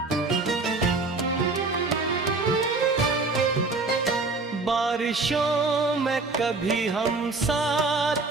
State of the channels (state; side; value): quieter; left; 3.6 dB